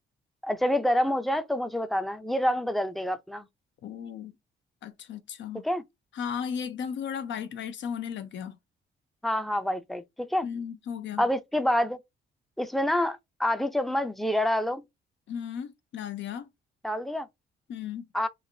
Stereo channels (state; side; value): normal; both; correlation 0.86